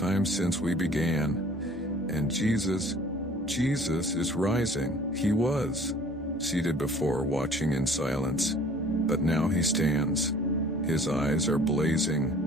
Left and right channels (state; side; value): normal; both; correlation 0.51